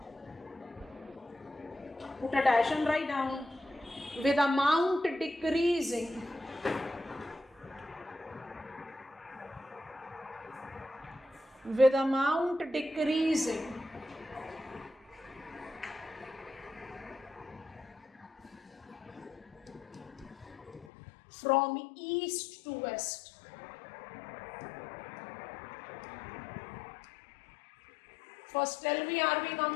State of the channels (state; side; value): drops out; right; at 20.9 s